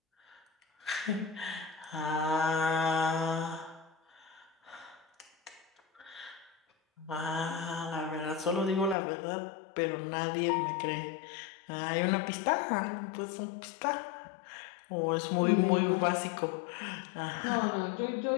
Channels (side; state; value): right; drops out; at 9.0 s